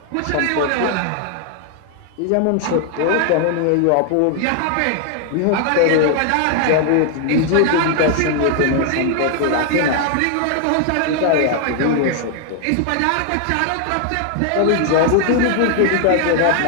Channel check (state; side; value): different; both; correlation 0.00